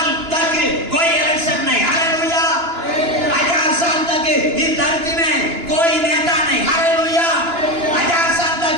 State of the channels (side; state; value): left; late; 2.9 ms